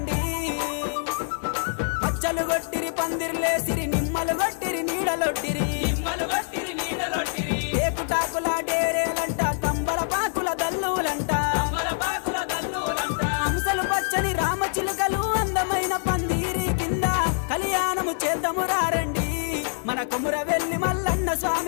పచ్చలు గొట్టిరి పందిర్లేసిరి నిమ్మలు గొట్టిరి నీడలొట్టిరి ఏకుటాకుల డేరేలంట తంబల పాకుల దల్లులంట హంసలు పచ్చని రామచిలుకలు అందమైన పందిరి కింద కళ్యాణము చేద్దాము రారండి మన కొమురవెల్లి మల్లన్న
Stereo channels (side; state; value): right; silent; 57 dB below the other